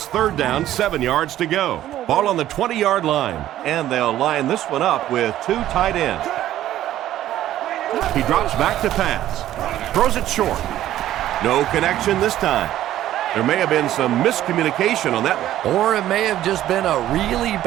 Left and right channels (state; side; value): quieter; left; 13.0 dB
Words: 3rd down, 7 yards to go. Ball on the 20-yard line, and they'll line this one up with 2 tight ends. He drops back to pass. Throws it short. No connection this time. There may have been some miscommunication on that one. Or it may have just been a really